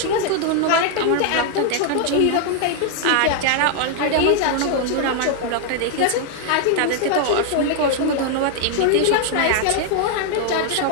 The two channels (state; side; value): different; both; correlation 0.00